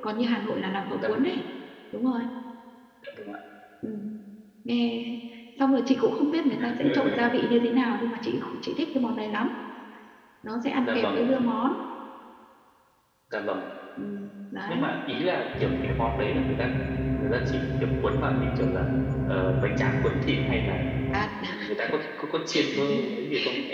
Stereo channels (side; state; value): both; identical; correlation 1.00